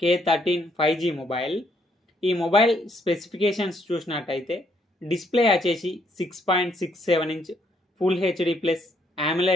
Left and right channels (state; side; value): normal; both; correlation 0.71